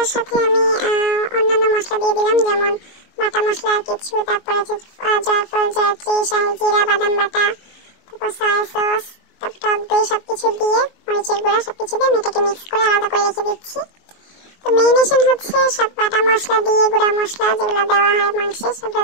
সাথে আমি অন্যান্য মশলা দিয়ে দিলাম, যেমন বাটা মশলা আর কিছু, তারপরে জয়ফল, জয়ত্রী, শাহি জিরা, বাদাম বাটা, তারপর সয়া সস, তারপর টক দই, সবকিছু দিয়ে মরিচের গুঁড়া সবকিছু দিয়ে আমি এটাকে মিক্স করে আলাদা করে রেখে দিচ্ছি। তো ম্যারিনেশন সব বাটা মশলা দিয়ে, গুঁড়া মশলা যেগুলো দেওয়া হয় মাংসে সেগুলো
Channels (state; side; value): late; right; 21 ms